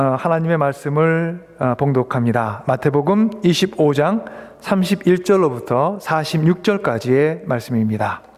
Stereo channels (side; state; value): both; identical; correlation 1.00